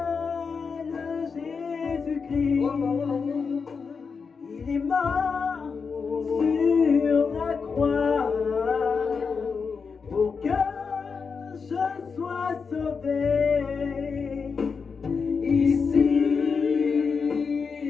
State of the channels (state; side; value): quieter; right; 5.4 dB